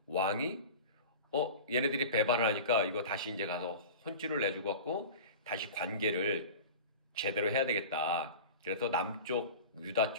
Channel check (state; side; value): inverted; both; correlation -0.34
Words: 얘네들이 배반을 하니까 이거 다시 이제 가서 혼쭐을 내주고 갖고 다시 관계를 제대로 해야 되겠다. 그래서 남쪽 유다